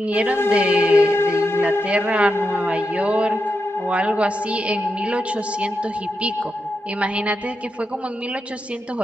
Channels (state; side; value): normal; both; correlation 0.86